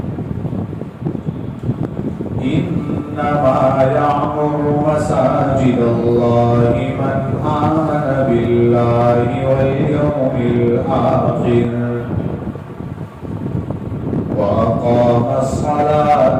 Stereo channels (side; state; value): both; identical; correlation 1.00